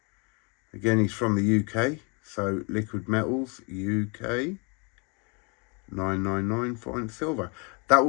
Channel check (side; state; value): right; quieter; 33.2 dB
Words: Again, he's from the UK. So Liquid Metals UK 999 fine silver. That